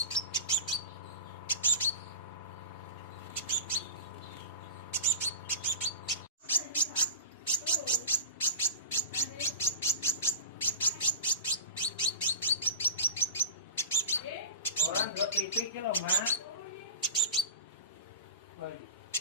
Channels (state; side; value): inverted; both; correlation -0.31